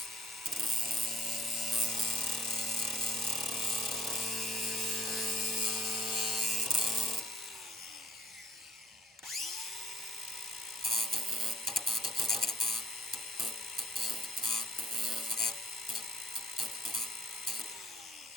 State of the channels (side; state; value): both; normal; correlation 0.64